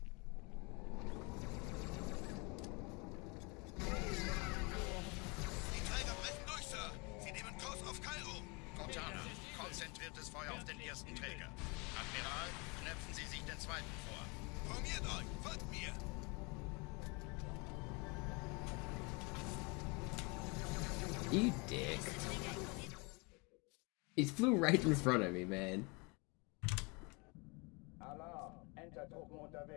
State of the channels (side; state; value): right; quieter; 29.7 dB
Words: Die Träger brechen durch, Sir. Sie nehmen Kurs auf Kairo. Cortana, konzentriertes Feuer auf den ersten Träger. Admiral, knöpfen Sie sich den zweiten vor. Formiert euch. Folgt mir. You dick. He flew right in front of me, man. Alarm, Entertruppen